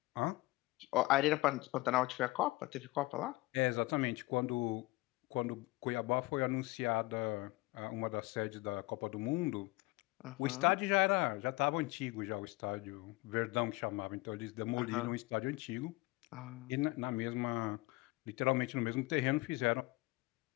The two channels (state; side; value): quieter; right; 21.4 dB